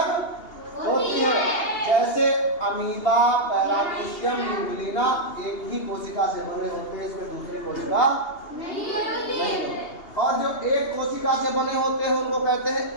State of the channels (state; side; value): late; right; 2.8 ms